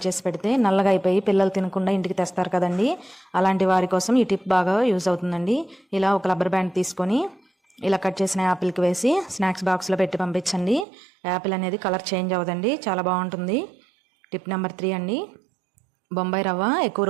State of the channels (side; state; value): left; drops out; at 10.9 s